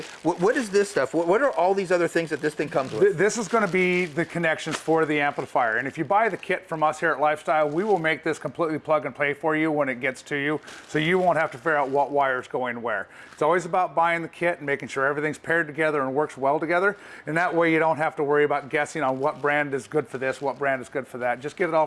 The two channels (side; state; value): both; identical; correlation 1.00